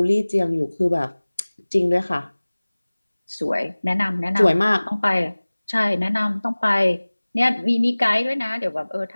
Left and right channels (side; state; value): both; inverted; correlation -1.00